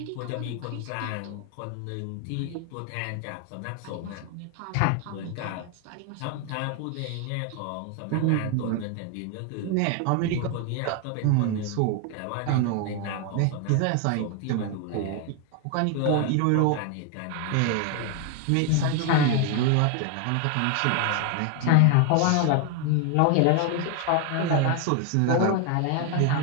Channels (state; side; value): different; both; correlation 0.01